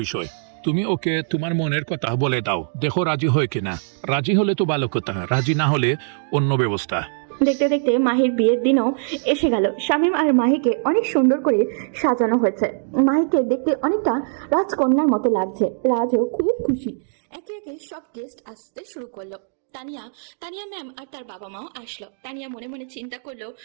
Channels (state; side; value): silent; left; digital silence